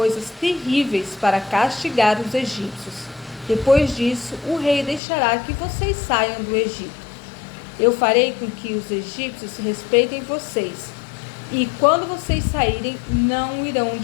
terríveis para castigar os egípcios. Depois disso, o rei deixará que vocês saiam do Egito. Eu farei com que os egípcios respeitem vocês, e quando vocês saírem, não irão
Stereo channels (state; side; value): drops out; right; at 5.0 s